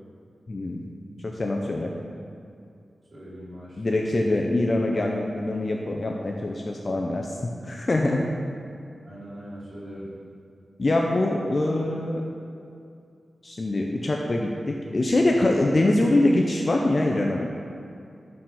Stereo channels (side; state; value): both; normal; correlation 0.95